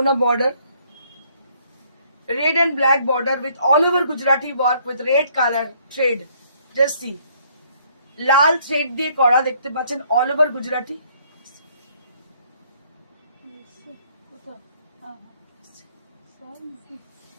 border, red and black border with all over Gujarati work with red color thread. Just see, Lal thread দিয়ে করা, দেখতে পাচ্ছেন all over Gujarati.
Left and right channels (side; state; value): both; inverted; correlation -0.65